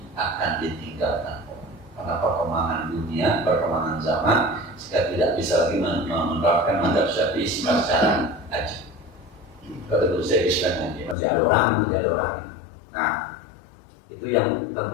akan ditinggalkan orang. Karena perkembangan dunia, perkembangan zaman, kita tidak bisa lagi menerapkan mazhab Syafi'i secara aja. Kalau dulu saya Islam aja, masih ada orang. Nah, Itu yang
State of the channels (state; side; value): drops out; right; at 11.2 s